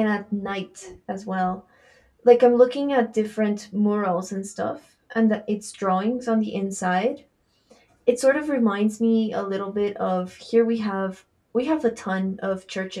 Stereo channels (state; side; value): identical; both; correlation 1.00